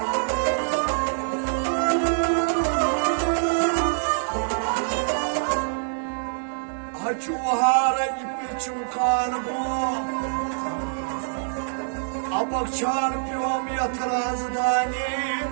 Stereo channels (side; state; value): left; silent; digital silence